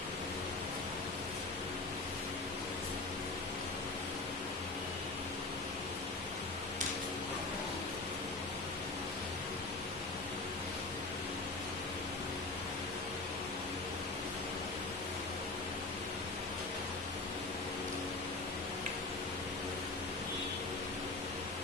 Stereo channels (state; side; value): quieter; right; 3.3 dB